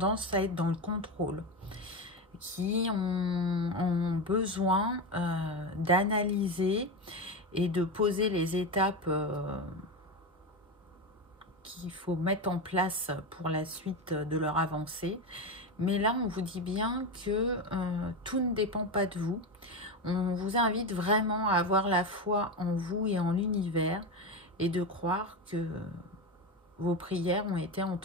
à être dans le contrôle, qui ont besoin d'analyser et de poser les étapes qu'il faut mettre en place pour la suite de leur avancée. Mais là, on vous dit bien que tout ne dépend pas de vous. On vous invite vraiment à avoir la foi en vous et en l'univers et de croire que vos prières ont été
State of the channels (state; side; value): normal; both; correlation 0.17